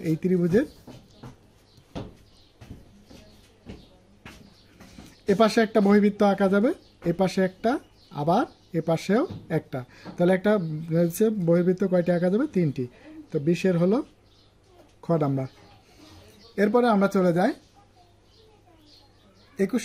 এই ত্রিভুজের এপাশে একটা বহির্বৃত্ত আঁকা যাবে, এপাশে একটা, আবার এপাশেও একটা, তাহলে একটা বহির্বৃত্ত কয়টি আঁকা যাবে 3টি। তো 20-এর হলো খ নাম্বার। এরপরে আমরা চলে যাই 21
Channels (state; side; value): identical; both; correlation 1.00